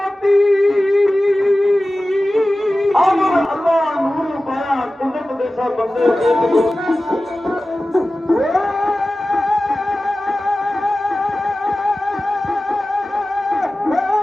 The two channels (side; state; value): both; normal; correlation 0.96